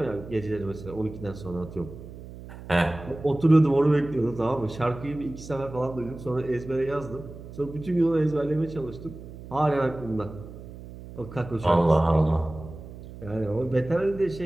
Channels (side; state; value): right; noise; hum, 14 dB below the sound